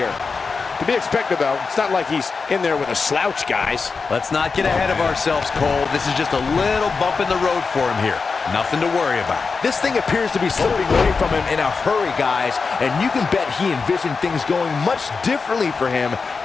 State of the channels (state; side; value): quieter; right; 4.7 dB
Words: To be expected, though. It's not like he's in there with a slouch, guys. Let's not get ahead of ourselves, Cole. This is just a little bump in the road for him here. Nothing to worry about. This thing appears to be slipping away from him in a hurry, guys. And you can bet he envisioned things going much differently for him